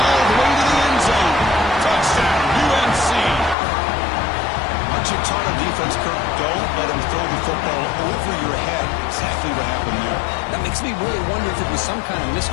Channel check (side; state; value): right; drops out; at 3.6 s